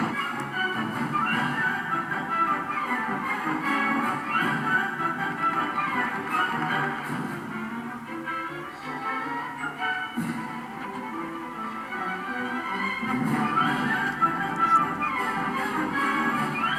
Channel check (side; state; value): both; identical; correlation 1.00